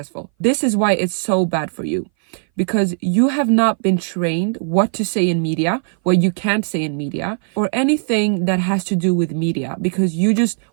This is why it's so bad for you, because you have not been trained what to say in media, what you can't say in media, or anything that has to do with media, because you just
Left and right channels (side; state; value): left; silent; 61 dB below the other